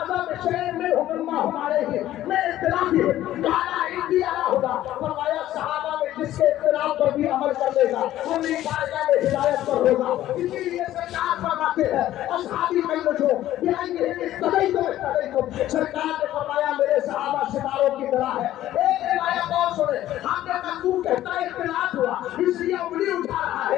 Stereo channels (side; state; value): right; quieter; 13.5 dB